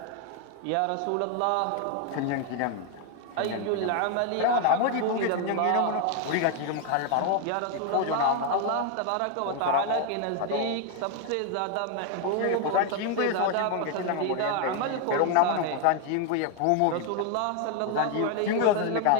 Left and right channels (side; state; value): both; different; correlation 0.00